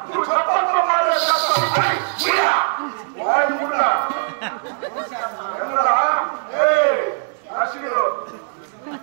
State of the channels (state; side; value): silent; left; digital silence